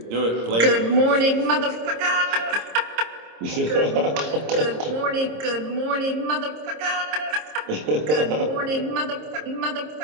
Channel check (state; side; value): late; left; 26 ms